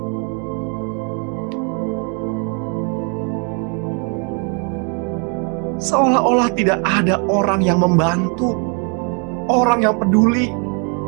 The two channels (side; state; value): left; quieter; 35.8 dB